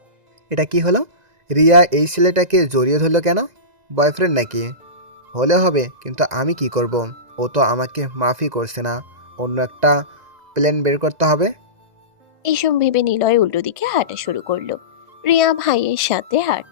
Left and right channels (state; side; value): late; left; 2.0 ms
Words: এটা কি হলো? রিয়া এই ছেলেটাকে জড়িয়ে ধরলো কেন? বয়ফ্রেন্ড নাকি? হলে হবে, কিন্তু আমি কি করব? ও তো আমাকে মাফই করছে না, অন্য একটা প্ল্যান বের করতে হবে। এইসব ভেবে নিলয় উল্টো দিকে হাঁটা শুরু করলো। রিয়া ভাইয়ের সাথে